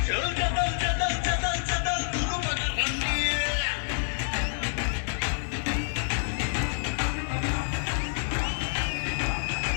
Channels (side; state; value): right; silent; digital silence